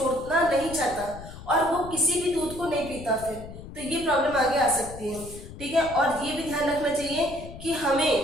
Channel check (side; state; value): left; noise; rumble, 14 dB below the sound